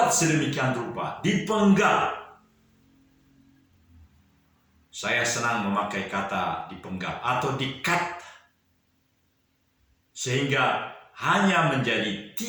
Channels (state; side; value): identical; both; correlation 1.00